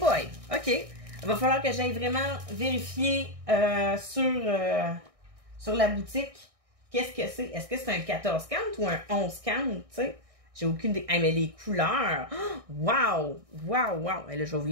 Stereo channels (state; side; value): late; left; 1.6 ms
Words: OK. Il va falloir que j'aille vraiment vérifier sur la boutique qu'est-ce que c'est. Est-ce que c'est un 14 count ou un 11 count, tu sais? J'ai aucune idée. Hey, mais les couleurs! Wow! Wow! Wow! Et là, je vais vous